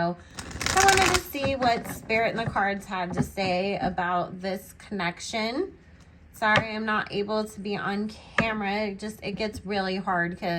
wanted to see what Spirit and the cards had to say about this connection. Sorry, I'm not able to be on camera. It gets really hard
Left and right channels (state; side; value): identical; both; correlation 1.00